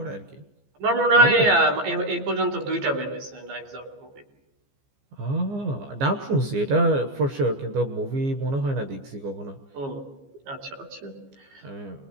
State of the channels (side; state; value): left; late; 15 ms